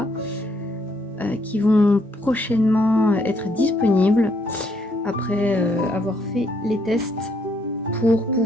qui vont prochainement être disponibles après avoir fait les tests pour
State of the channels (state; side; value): normal; both; correlation 0.71